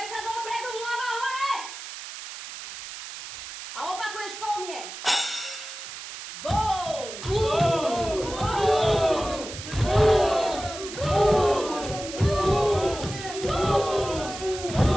sa dopredu, hlava hore! A opakuješ po mne. Boum!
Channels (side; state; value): right; noise; hiss, 11 dB below the sound